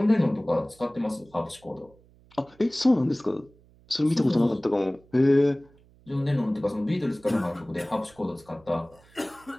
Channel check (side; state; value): right; noise; hum, 28 dB below the sound